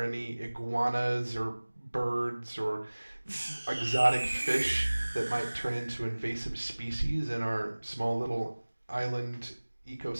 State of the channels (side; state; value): both; inverted; correlation -1.00